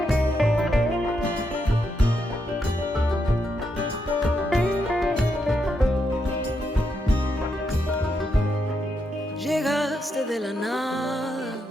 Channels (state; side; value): normal; both; correlation 0.81